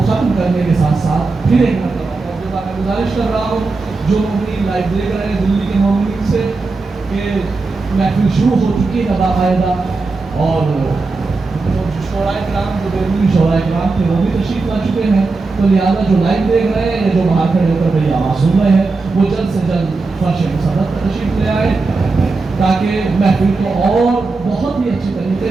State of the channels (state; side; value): quieter; left; 3.8 dB